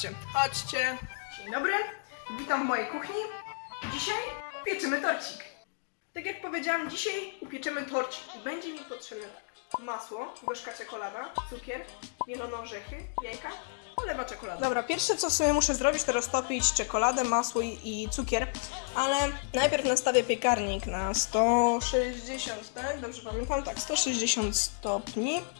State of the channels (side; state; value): right; silent; digital silence